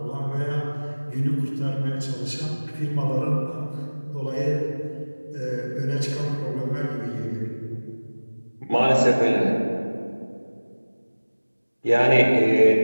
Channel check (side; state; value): both; inverted; correlation -1.00